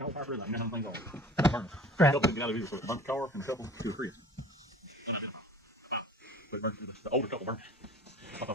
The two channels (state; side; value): normal; both; correlation 0.44